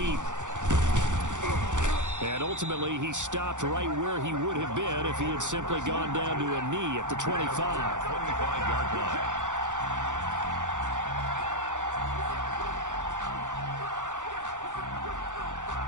And ultimately, he stopped right where he would have been if he had simply gone down to a knee at the 25. 25-yard line.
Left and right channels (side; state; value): left; late; 0.86 ms